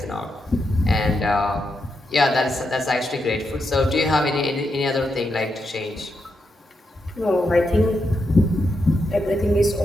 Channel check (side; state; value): both; normal; correlation 0.84